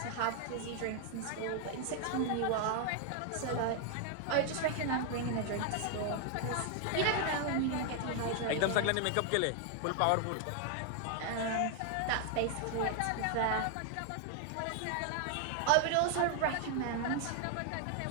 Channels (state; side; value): different; both; correlation 0.00